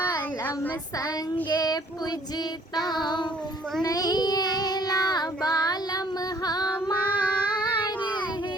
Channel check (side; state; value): both; normal; correlation 0.59